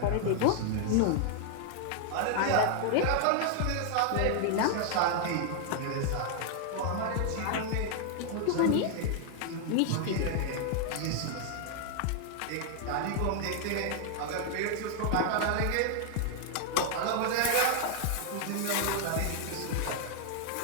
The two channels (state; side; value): different; both; correlation 0.00